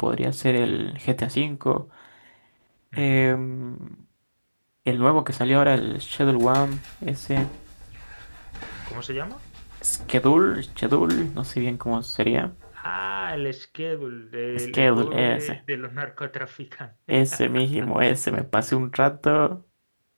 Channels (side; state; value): both; inverted; correlation -1.00